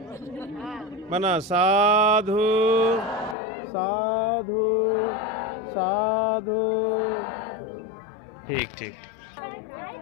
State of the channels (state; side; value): drops out; right; at 3.4 s